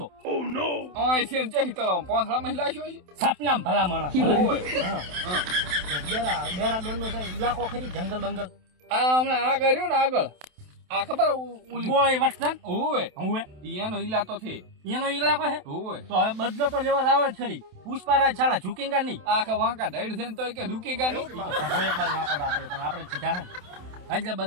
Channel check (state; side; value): late; left; 27 ms